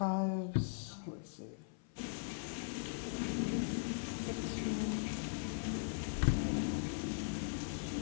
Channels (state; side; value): silent; right; 51 dB below the other